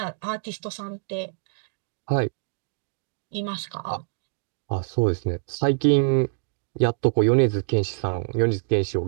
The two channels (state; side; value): silent; left; digital silence